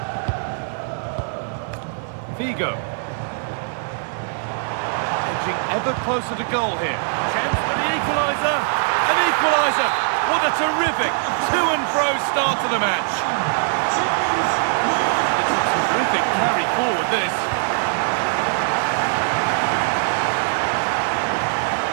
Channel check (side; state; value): left; silent; digital silence